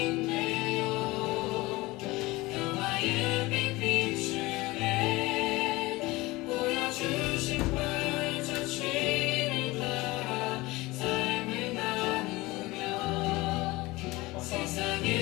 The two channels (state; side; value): quieter; right; 21.0 dB